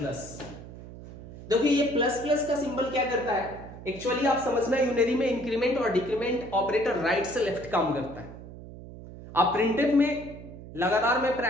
देखिए ये प्लस प्लस का सिंबल क्या करता है, एक्चुअली आप समझना, यूनरी में इंक्रीमेंट और डिक्रीमेंट ऑपरेटर राइट से लेफ्ट काम करता है। आप प्रिंटेड में लगातार मैं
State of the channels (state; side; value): noise; right; hum, 15 dB below the sound